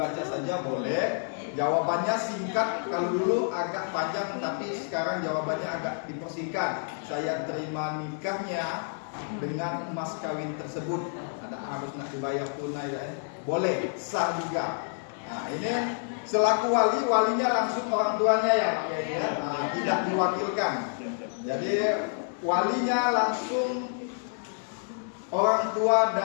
saja boleh. Jawabannya singkat, kalau dulu agak panjang tapi sekarang jawabannya agak dipersingkat. Saya terima nikahnya dengan emas kawin tersebut. Ada harus nak dibayar tunai ya. Boleh, sah juga. Nah, ini selaku walinya langsung orang tuanya ya, nah, tidak diwakilkan. Jadi walinya langsung orang tua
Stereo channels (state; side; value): silent; right; 59 dB below the other